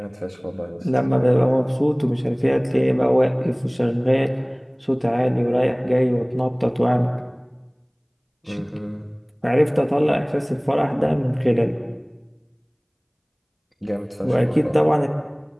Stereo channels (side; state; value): both; identical; correlation 1.00